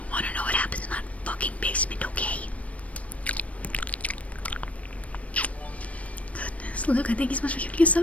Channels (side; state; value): right; late; 0.066 ms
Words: want to know what happens in that fucking basement, okay? Goodness, Luke, I thank you so much for giving me